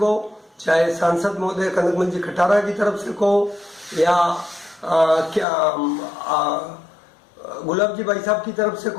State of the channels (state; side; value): drops out; right; at 5.5 s